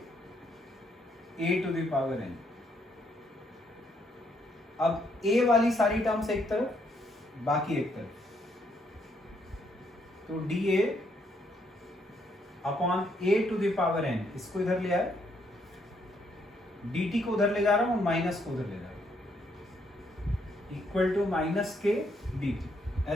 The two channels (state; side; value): normal; both; correlation 0.72